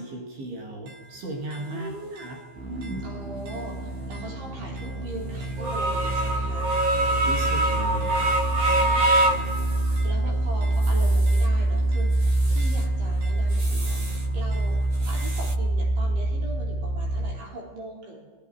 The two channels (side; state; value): left; late; 15 ms